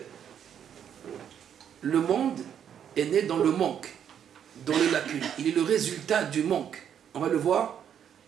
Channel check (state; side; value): quieter; left; 8.9 dB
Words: Le monde est né dans le manque, dans les lacunes. Il est le résultat du manque. On va le voir